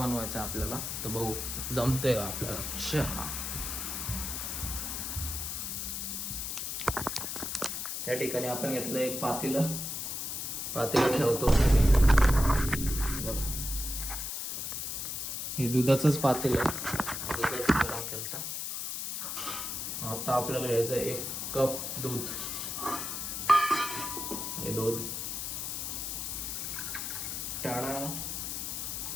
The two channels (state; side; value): noise; left; hiss, 4 dB below the sound